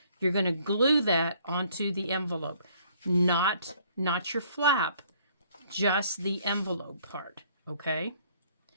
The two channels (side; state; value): both; inverted; correlation -0.62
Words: You're going to glue that onto the envelope, not your flap, just the envelope part, okay?